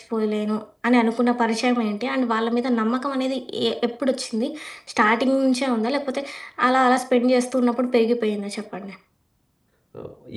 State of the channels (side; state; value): both; identical; correlation 1.00